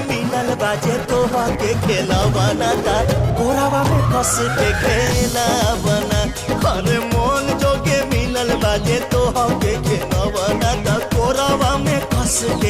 मिलल बाजे तोहा के खेला बना ता कोरावा में कस के खेला बना अरे मन जोगे मिलल बाजे तोहा के खेला बना ता कोरावा में कस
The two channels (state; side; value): identical; both; correlation 1.00